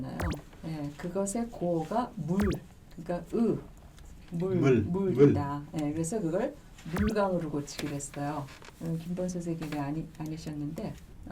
예, 그것의 고가 물, 그러니까 물이다. 예, 그래서 그걸 물강으로 고치기로 했어요. 김범 선생님이 아니셨는데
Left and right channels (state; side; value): identical; both; correlation 1.00